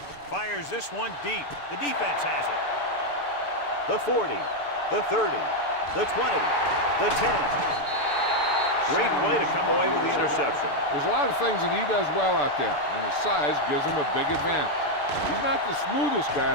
Fires this one deep. The defense has it. The 40, the 30, the 20, the 10. Great play to come away with the interception. There's a lot of things that he does well out there, and his size gives him a big advantage. He's not the smoothest guy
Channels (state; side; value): late; right; 6.9 ms